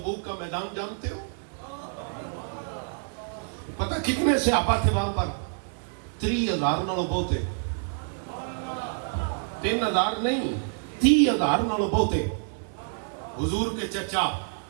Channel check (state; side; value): silent; left; 60 dB below the other